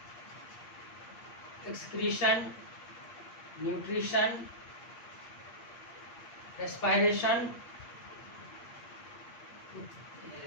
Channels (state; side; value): late; right; 8.5 ms